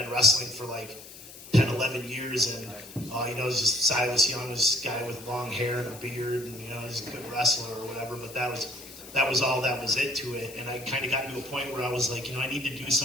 wrestling for 10, 11 years. And, it was just Silas Young, this guy with long hair and a beard, and, just a good wrestler or whatever. But that was all that was it to it. And I kind of got to a point where I was I need to do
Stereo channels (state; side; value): noise; left; hiss, 16 dB below the sound